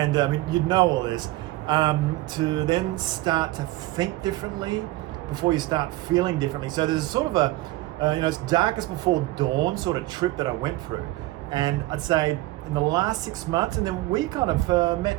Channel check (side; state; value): left; quieter; 18.5 dB